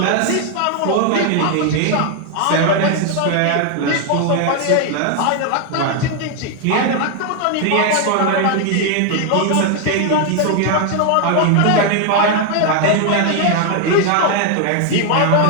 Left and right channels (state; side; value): different; both; correlation 0.00